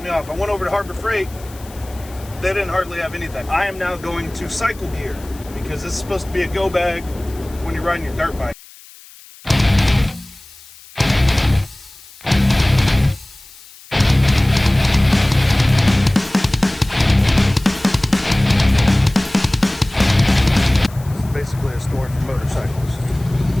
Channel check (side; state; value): left; noise; hiss, 21 dB below the sound